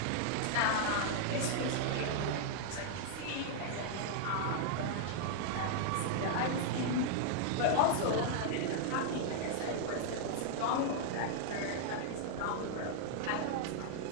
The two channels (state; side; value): different; both; correlation -0.01